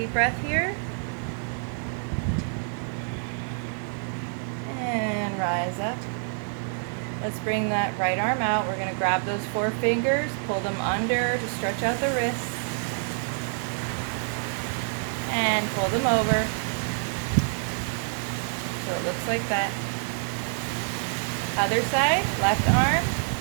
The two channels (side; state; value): left; silent; 60 dB below the other